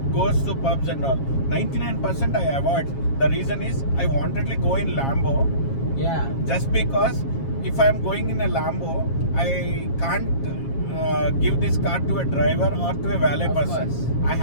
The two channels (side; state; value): right; late; 7.4 ms